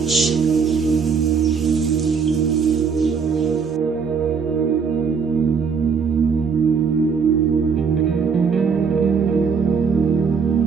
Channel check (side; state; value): left; quieter; 5.9 dB